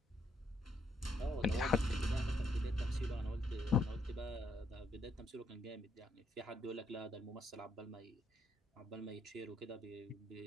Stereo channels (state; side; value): normal; both; correlation 0.73